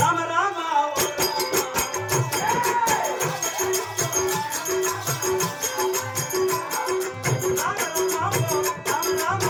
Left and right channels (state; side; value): identical; both; correlation 1.00